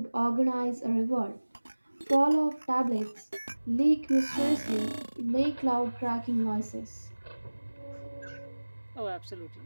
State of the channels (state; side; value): inverted; both; correlation -1.00